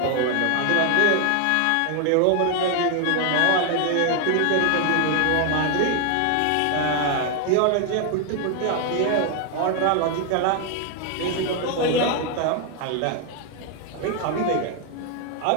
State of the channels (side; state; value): both; different; correlation 0.01